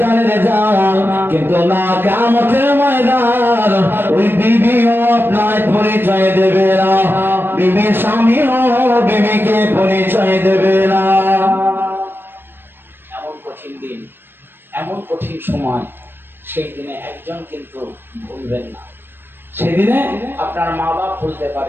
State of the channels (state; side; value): late; left; 0.099 ms